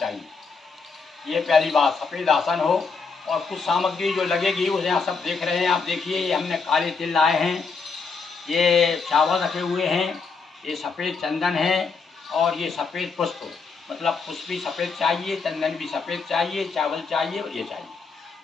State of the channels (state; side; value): quieter; right; 4.8 dB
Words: ये पहली बात, सफ़ेद आसन हो। और कुछ सामग्री जो लगेगी उसे आप सब देख रहे हैं, आप देखिए, ये हमने काले तिल लाए हैं, ये चावल रखे हुए हैं, ये सफ़ेद चंदन है, और ये सफ़ेद पुष्प, मतलब पुष्प भी सफ़ेद चाहिए, चंदन भी सफ़ेद चाहिए, चावल चाहिए और ये चाहिए,